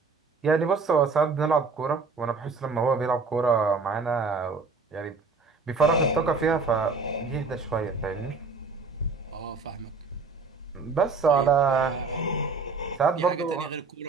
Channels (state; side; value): quieter; left; 4.4 dB